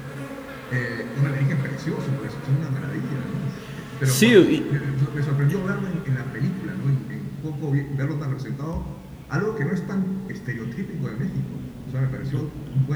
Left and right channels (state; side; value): identical; both; correlation 1.00